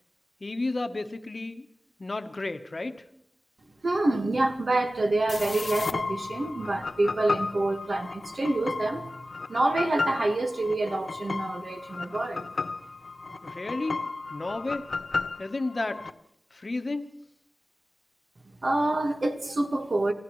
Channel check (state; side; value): normal; both; correlation 0.95